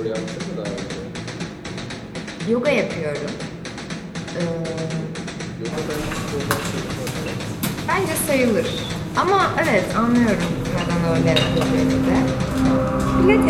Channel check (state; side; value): identical; both; correlation 1.00